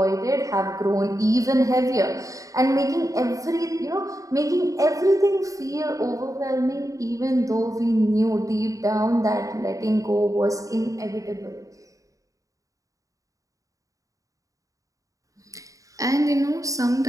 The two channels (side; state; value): left; late; 0.16 ms